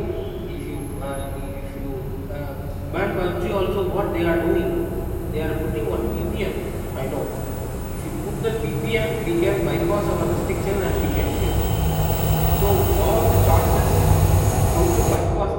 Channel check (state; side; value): identical; both; correlation 1.00